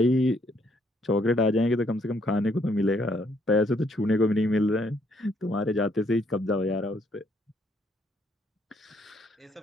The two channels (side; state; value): both; normal; correlation 0.69